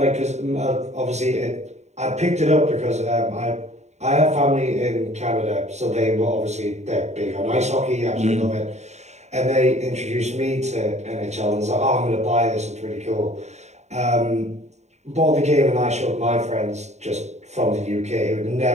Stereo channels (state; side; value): late; left; 0.33 ms